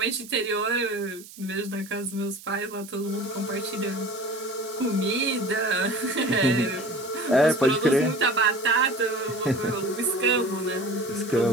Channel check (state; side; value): noise; right; hiss, 18 dB below the sound